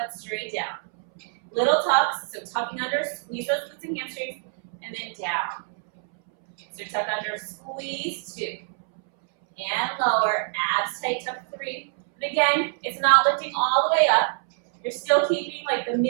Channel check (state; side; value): silent; left; 61 dB below the other